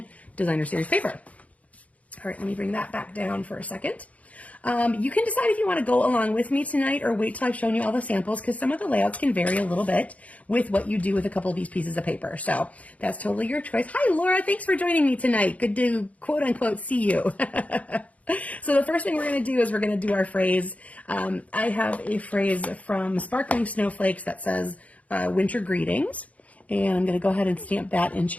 Designer Series paper. All right, let me bring that back down for a second. You can decide if you want to go along with me tonight or wait till I've shown you all the samples, because some of the layouts can vary a little bit with what you do with a couple of these pieces of paper. So that's totally your choice. Hi, Laura. Thanks for joining me tonight. Good to, quote unquote, see you. So the first thing we're going to do is we're going to do our phrase. I have a phrase from Sparkling Snowflakes that says winter greetings. And I'm going to go ahead and stamp that in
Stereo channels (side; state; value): right; late; 0.068 ms